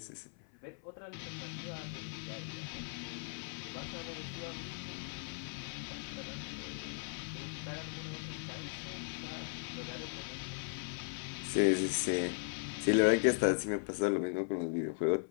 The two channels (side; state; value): right; silent; 53 dB below the other